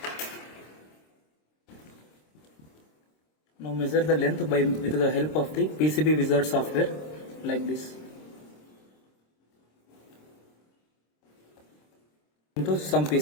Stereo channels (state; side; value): late; right; 26 ms